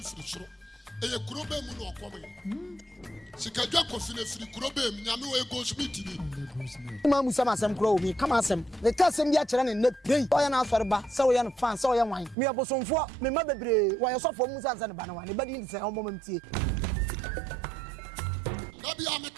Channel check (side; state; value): left; drops out; at 12.4 s